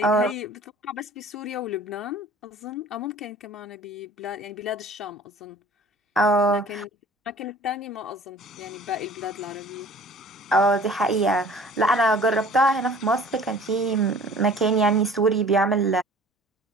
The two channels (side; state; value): both; normal; correlation 0.47